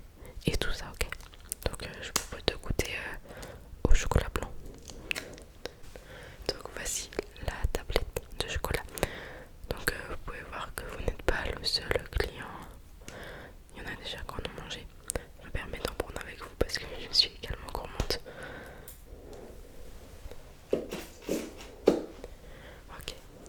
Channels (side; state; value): both; identical; correlation 1.00